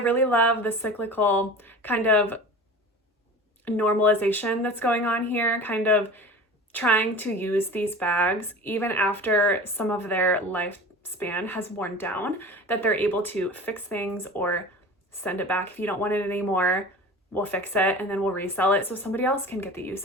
love the cyclical kind of normalization that's going on here, kind of trying to use these bags even after some of their lifespan has worn down, that they're able to fix things or send it back. If you don't want it anymore, we'll fix it and then we'll resell it so somebody else can get the use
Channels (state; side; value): normal; both; correlation 0.37